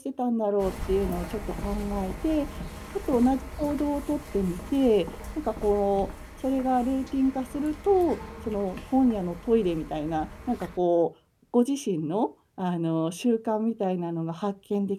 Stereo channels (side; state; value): both; identical; correlation 1.00